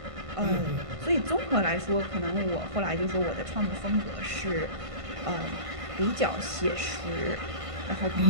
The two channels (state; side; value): late; left; 1.5 ms